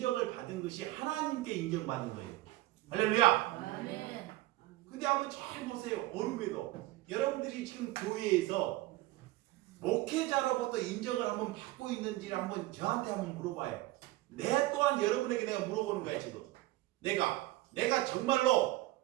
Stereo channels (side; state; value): left; quieter; 17.9 dB